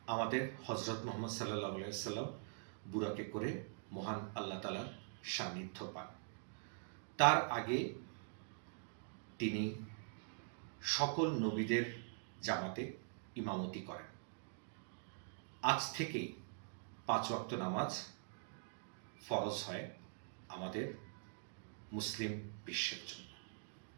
আমাদের হজরত মোহাম্মদ সাল্লাল্লাহু আলাইহি সাল্লাম বুরাকে করে মহান আল্লাহ তাআলার সান্নিধ্য পান। তার আগে তিনি সকল নবীদের জামাতে ইমামতি করেন। আজ থেকেই 5 ওয়াক্ত নামাজ ফরজ হয় আমাদের মুসলিম বিশ্বের জন্য।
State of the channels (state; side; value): silent; left; digital silence